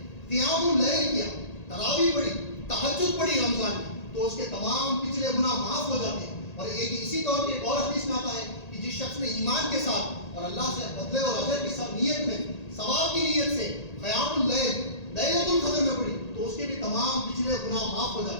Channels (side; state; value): right; late; 1.8 ms